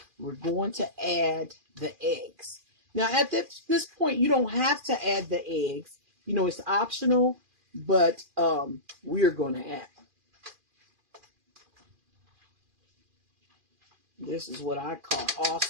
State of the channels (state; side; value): late; left; 2.4 ms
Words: we're going to add the eggs. Now, at this point, you don't have to add the eggs. You know, it's optional, but we're going to add them. This is what I call